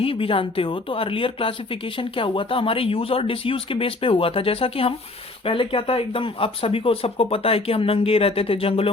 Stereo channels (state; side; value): quieter; right; 3.1 dB